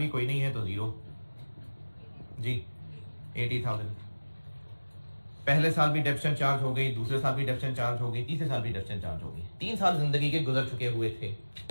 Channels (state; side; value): inverted; both; correlation -1.00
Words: कोई नहीं है तो 0 जी, 80,000। पहले साल भी डेप्शन चार्ज हो गई, दूसरे साल भी डेप्शन चार्ज हो गई, तीसरे साल भी डेप्शन चार्ज हो गई। 3 साल जिंदगी के गुजर चुके हुए थे,